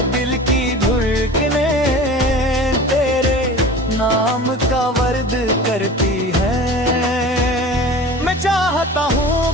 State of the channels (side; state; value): both; normal; correlation 0.38